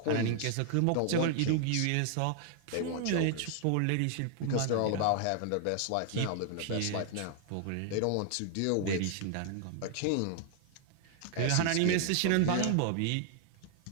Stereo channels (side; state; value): both; different; correlation 0.00